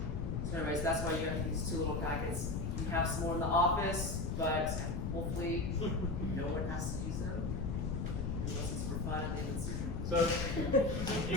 So anyways, that's why you have these two little packets. You have some more in the office, but hopefully no one has to use them. Unless it's for fun at the end of the season. So,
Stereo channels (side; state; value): left; noise; rumble, 1 dB below the sound